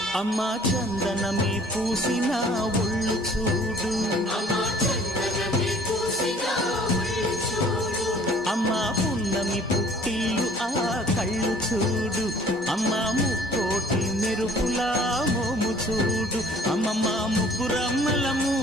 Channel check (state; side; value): normal; both; correlation 0.54